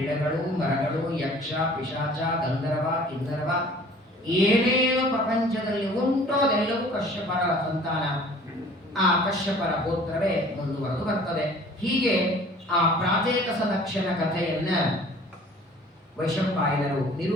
ಮರಗಳು, ಯಕ್ಷ, ಪಿಶಾಚ, ಗಂಧರ್ವ, ಕಿನ್ನರವ, ಏನೇನು ಪ್ರಪಂಚದಲ್ಲಿ ಉಂಟೋ ಅದೆಲ್ಲವೂ ಕಶ್ಯಪರ ಸಂತಾನ. ಆ ಕಶ್ಯಪರ ಗೋತ್ರವೇ ಮುಂದುವರೆದು ಬರ್ತದೆ. ಹೀಗೆ ಆ ಪ್ರಾಚೇತಸ ದಕ್ಷನ ಕಥೆಯನ್ನ ವೈಶಂಪಾಯನರು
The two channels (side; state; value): both; normal; correlation 0.50